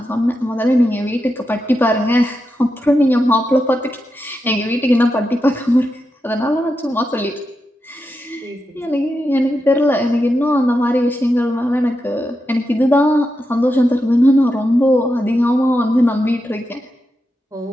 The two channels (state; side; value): normal; both; correlation 0.87